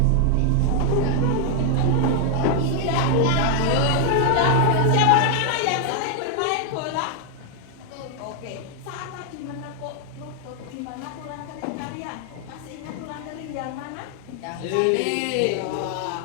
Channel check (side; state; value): both; different; correlation 0.00